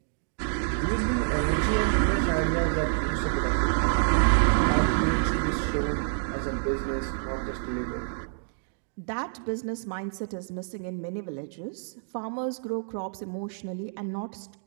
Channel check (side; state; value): left; silent; digital silence